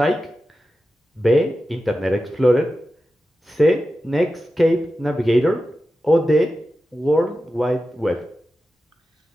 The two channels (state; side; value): normal; both; correlation 0.92